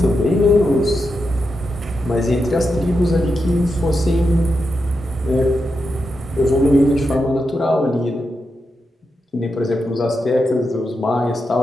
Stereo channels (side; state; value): both; normal; correlation 0.87